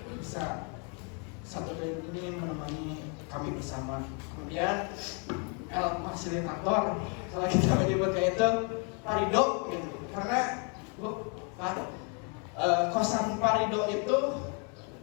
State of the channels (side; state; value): right; quieter; 37.4 dB